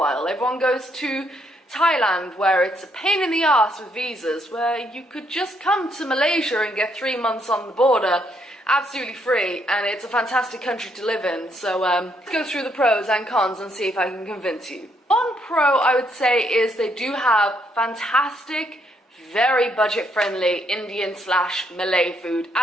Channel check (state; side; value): normal; both; correlation 0.73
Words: Everyone goes to Thailand, where it's a pain in the ass with visas, where you could just come to Malaysia and get 3 months on the border absolutely free, and it's a fantastic country to live in. So let's go through the pros and cons and see if I can convince you. One pro I would say is they do have fantastic, very budget-friendly Indian/Malay food